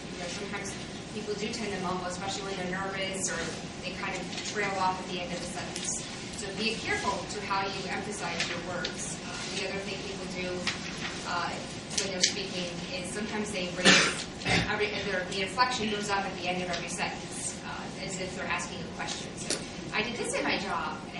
sometimes people do tend to mumble, especially when they're nervous or they kind of trail off at the end of the sentence. So be careful to how you emphasize your words. The other thing people do when they're speaking is sometimes they raise, the inflection goes up at the end of every sentence, as if they're asking a question. So I did this in my job,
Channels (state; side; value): identical; both; correlation 1.00